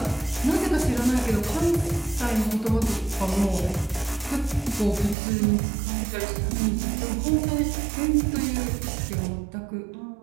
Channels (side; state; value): left; drops out; at 5.2 s